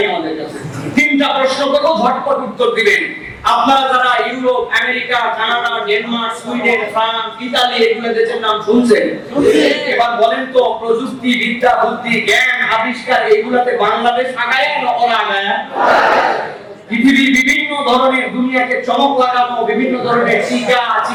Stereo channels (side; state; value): both; identical; correlation 1.00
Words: আমাদের কাছে। 3টা প্রশ্ন করব, ঝটপট উত্তর দিবেন। আপনারা যারা Europe, America, Canada, Denmark, Sweden, France, Italy এগুলো দেশের নাম শুনছেন, এবার বলেন তো প্রযুক্তি, বিদ্যা, বুদ্ধি, জ্ঞান, আবিষ্কার এগুলাতে বাংলাদেশ আগায় না ওরা আগায়? পৃথিবীর বিভিন্ন ধরনের দুনিয়াকে চমক লাগানো বিভিন্ন ধরনের টিকা,